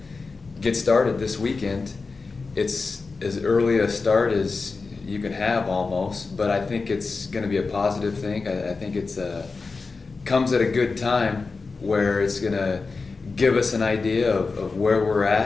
get started this weekend. It's as early a start as you can have almost, but I think it's going to be a positive thing. I think it's comes at a good time where it's going to give us an idea of where we're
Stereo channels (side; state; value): right; quieter; 4.2 dB